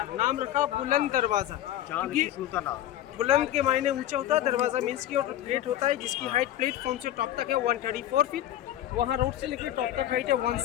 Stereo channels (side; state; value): right; quieter; 12.8 dB